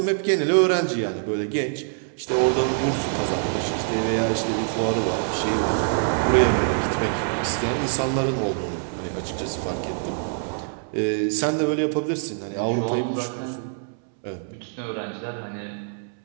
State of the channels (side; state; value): left; silent; 62 dB below the other